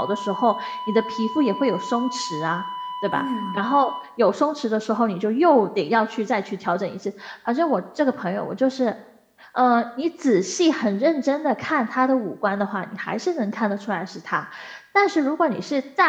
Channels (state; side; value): identical; both; correlation 1.00